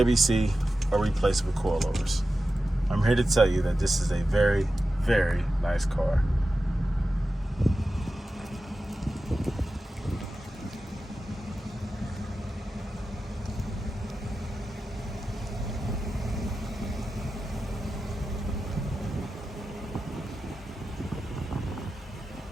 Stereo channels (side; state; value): both; normal; correlation 0.93